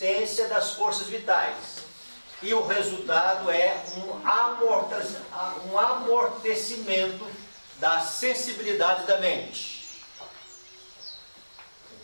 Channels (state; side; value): inverted; both; correlation -1.00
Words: das forças vitais. E o resultado é um amortecimento da sensibilidade da mente.